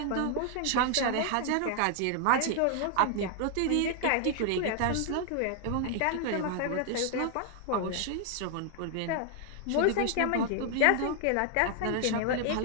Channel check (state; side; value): different; both; correlation 0.00